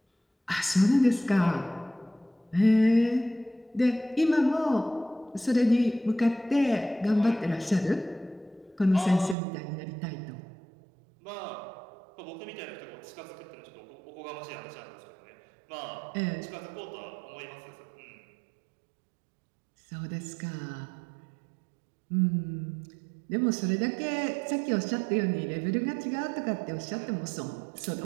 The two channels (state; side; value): drops out; left; at 9.3 s